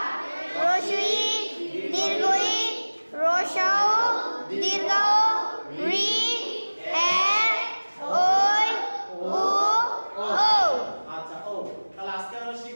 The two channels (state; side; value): inverted; both; correlation -1.00